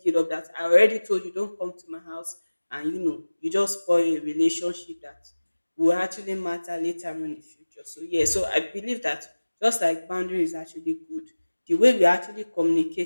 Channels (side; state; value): both; inverted; correlation -1.00